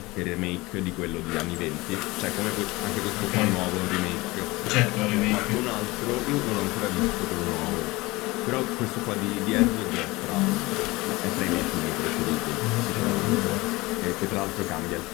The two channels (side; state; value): right; quieter; 21.7 dB